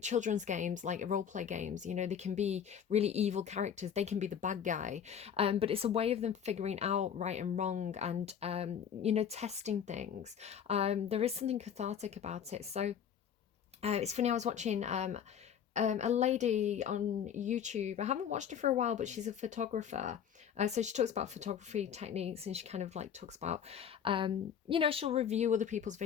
children's games, like role play games, they can be really evil characters, they can be the bad guy, but it's a way of them figuring out right and wrong, and testing things. There is something cathartic about it. So it's funny, I was watching a lady on YouTube. I haven't watched her for a while, but she's a photographer. So she talks about photography techniques, and she kind of like talks about, she'll review other people's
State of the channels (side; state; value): right; quieter; 8.3 dB